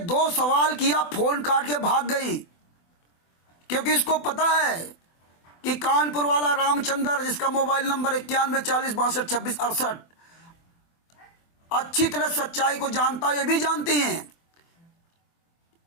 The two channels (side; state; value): right; late; 24 ms